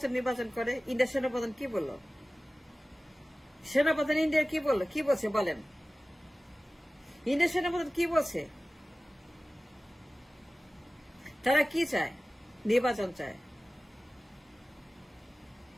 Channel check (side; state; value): both; normal; correlation 0.96